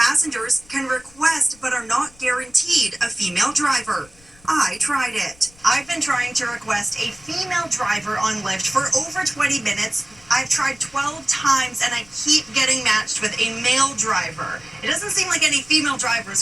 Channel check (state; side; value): noise; left; rumble, 27 dB below the sound